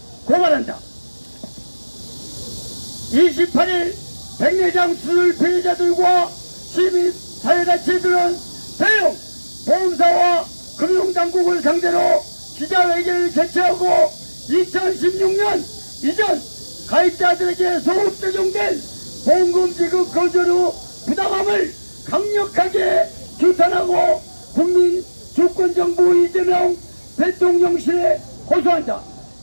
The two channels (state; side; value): inverted; both; correlation -1.00